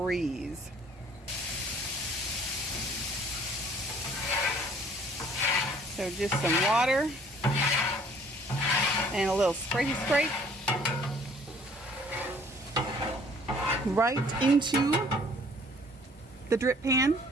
So just some water and a little scrape right into the drip pan.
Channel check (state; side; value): normal; both; correlation 0.56